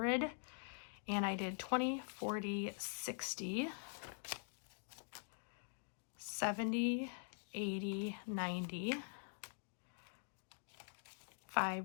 And I did 20, 40, 60, 70, 80, 90,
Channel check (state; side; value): silent; right; digital silence